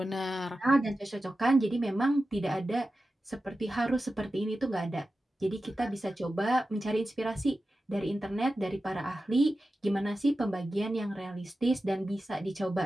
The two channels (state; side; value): normal; both; correlation 0.93